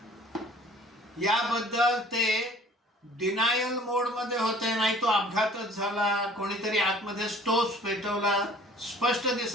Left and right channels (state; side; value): normal; both; correlation 0.51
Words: याबद्दल ते डिनायल मोड मध्ये होते. नाही तो अपघातच झाला, कोणीतरी आतमध्ये स्टोव्ह पेटवला, स्पष्ट